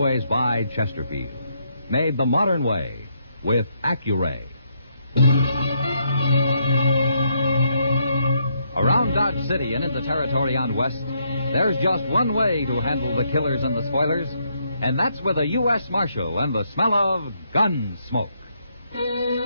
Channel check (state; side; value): inverted; both; correlation -0.75